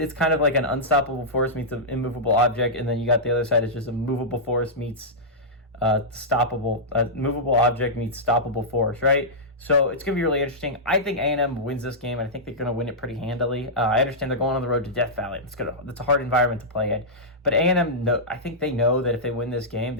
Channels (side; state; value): both; normal; correlation -0.12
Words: kind of like an unstoppable force meets an immovable object, and then you got the other side is just a movable force meets movable object meets stoppable force, right? So it's going to be really interesting. I think A&M wins this game, and I think they're going to win it pretty handily. I understand they're going on the road to Death Valley. That's a hard environment to play in. But A&M, I think they know that if they win this game,